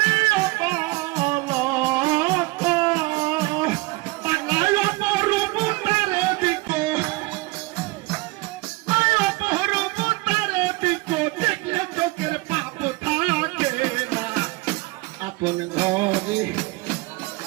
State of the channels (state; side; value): quieter; left; 23.0 dB